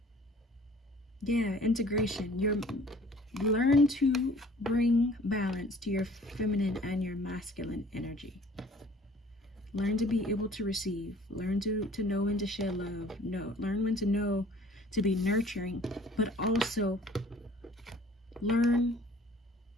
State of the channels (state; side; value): normal; both; correlation 0.52